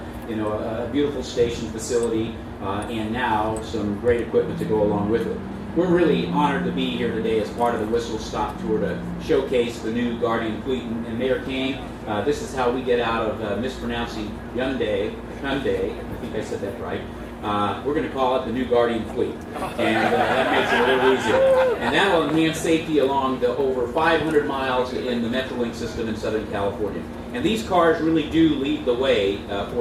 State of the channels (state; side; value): identical; both; correlation 1.00